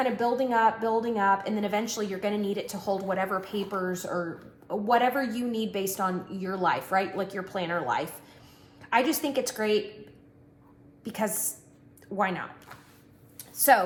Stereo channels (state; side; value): identical; both; correlation 1.00